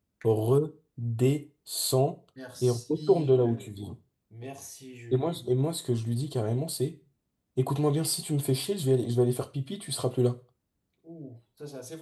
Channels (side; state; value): both; identical; correlation 1.00